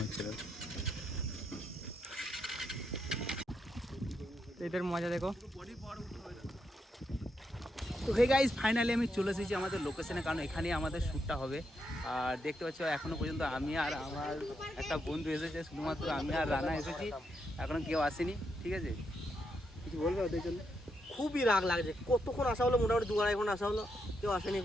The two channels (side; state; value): both; normal; correlation 0.81